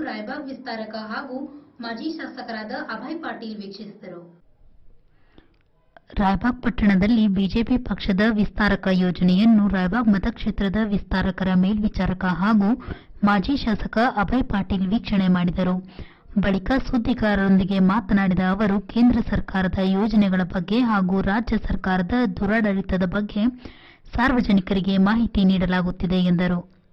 ರಾಯಬಾಗ್ ವಿಸ್ತಾರಕ ಹಾಗೂ ಮಾಜಿ ಶಾಸಕರಾದ ಅಭಯ್ ಪಾಟೀಲ್ ವೀಕ್ಷಿಸಿದರು. ರಾಯಬಾಗ್ ಪಟ್ಟಣದಲ್ಲಿ ಬಿಜೆಪಿ ಪಕ್ಷದ ವಿಸ್ತಾರಕ ಯೋಜನೆಯನ್ನು ರಾಯಬಾಗ್ ಮತಕ್ಷೇತ್ರದ ವಿಸ್ತಾರಕರ ಮೇಲ್ವಿಚಾರಕ ಹಾಗೂ ಮಾಜಿ ಶಾಸಕ ಅಭಯ್ ಪಾಟೀಲ್ ವೀಕ್ಷಣೆ ಮಾಡಿದರು. ಬಳಿಕ ಸುದ್ದಿಗಾರರೊಂದಿಗೆ ಮಾತನಾಡಿದ ಅವರು, ಕೇಂದ್ರ ಸರ್ಕಾರದ ಯೋಜನೆಗಳ ಬಗ್ಗೆ ಹಾಗೂ ರಾಜ್ಯ ಸರ್ಕಾರದ ದುರಾಡಳಿತದ ಬಗ್ಗೆ ಸಾರ್ವಜನಿಕರಿಗೆ ಮಾಹಿತಿ ನೀಡಲಾಗುತ್ತಿದೆ ಎಂದರು.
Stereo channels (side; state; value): both; identical; correlation 1.00